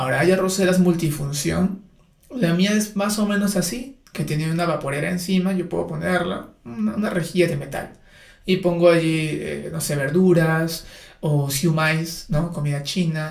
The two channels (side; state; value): both; identical; correlation 1.00